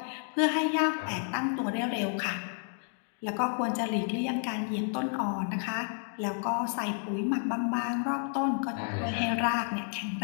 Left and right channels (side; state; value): right; silent; 57 dB below the other